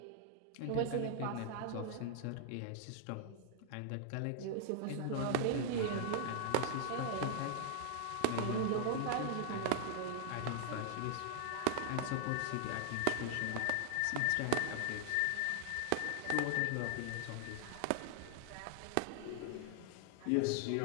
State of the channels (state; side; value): different; both; correlation 0.00